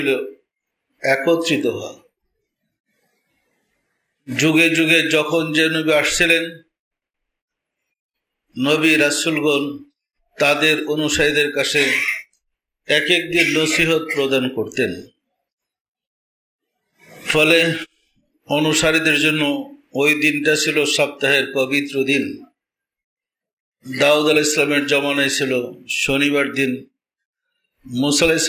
একত্রিত হওয়া। যুগে যুগে যখন যে নবী আসছিলেন, নবী রাসূলগণ তাদের অনুসারীদের কাছে এক এক দিন নসিহত প্রদান করতেন। ফলে অনুসারীদের জন্য ওই দিনটা ছিল সপ্তাহের পবিত্র দিন। দাউদ আলাইহিস সালামের জমানায় ছিল শনিবার দিন, মুসা আলাইহিস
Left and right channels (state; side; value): identical; both; correlation 1.00